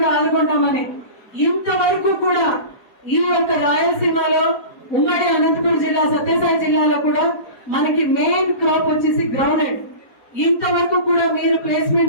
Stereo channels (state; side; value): late; right; 4.5 ms